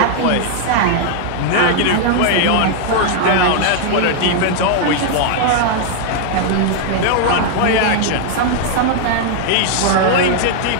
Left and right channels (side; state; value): both; different; correlation 0.00